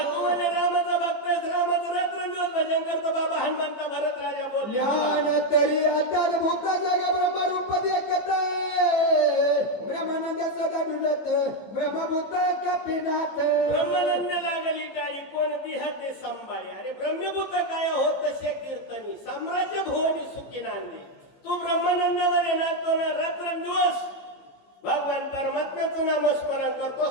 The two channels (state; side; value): late; right; 15 ms